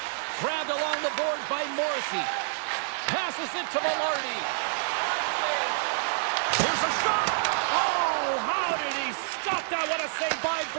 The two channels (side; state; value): left; silent; digital silence